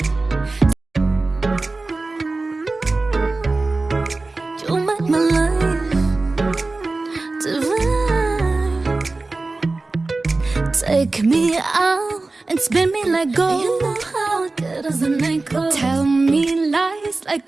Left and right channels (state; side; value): quieter; left; 3.4 dB